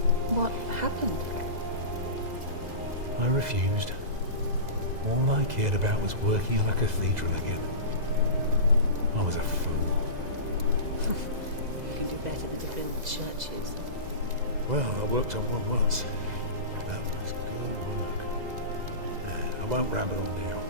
What happened? I refused. All I cared about was working on a cathedral again. I was a fool. You can do better than to build churches. Well, I worked on one once. That was good work. I won't ramble on now.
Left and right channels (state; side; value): late; left; 2.0 ms